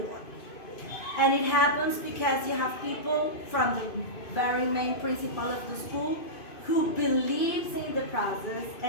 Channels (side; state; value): right; late; 2.5 ms